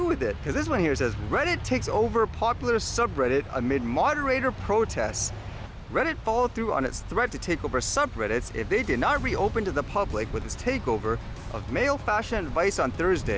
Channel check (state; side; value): identical; both; correlation 1.00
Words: with it, because this one here says, Reddit takes over popular subreddit amid moderator protests. Reddit followed through on its threat to take over subreddits if they did not reopen to the public with its takeover of male fashion advice on